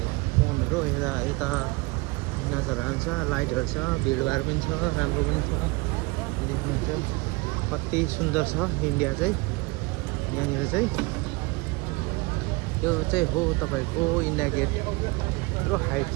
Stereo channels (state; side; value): quieter; left; 25.1 dB